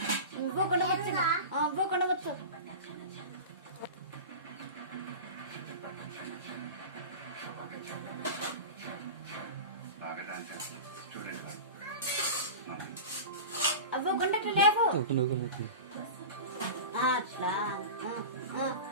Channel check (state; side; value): inverted; both; correlation -0.30